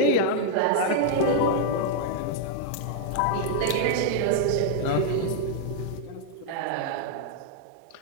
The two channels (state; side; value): different; both; correlation -0.01